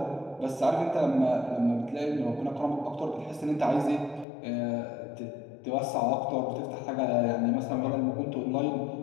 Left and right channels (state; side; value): drops out; right; at 4.2 s